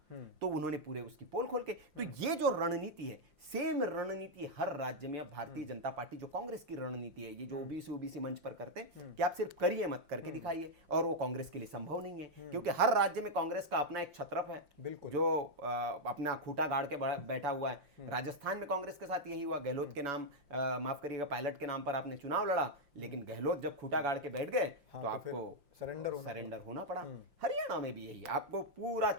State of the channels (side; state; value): left; late; 5.7 ms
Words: तो उन्होंने पूरे उसकी पोल खोल के, तो ये जो रणनीति रणनीति है, सेम रणनीति हर राज्य में। अब भारतीय जनता पार्टी जो कांग्रेस की रणनीति है, ये जो ओबीसी मंच पर करते हैं कि आप सिर्फ करिए मत करके दिखाइए, और वो कांग्रेस के लिए संभव नहीं है, क्योंकि हर राज्य में कांग्रेस का अपना एक छत्रप है जो अपना खूंटा गाड़ के बैठा हुआ है। राजस्थान में कांग्रेस के साथ यही हुआ, गहलोत के नाम, माफ करिएगा, पायलट के नाम पर आपने चुनाव लड़ा, लेकिन गहलोत जब खूंटा गाड़ के बैठ गए तो आपको सरेंडर होना पड़ा। हरियाणा में भी यही, आपको पूरा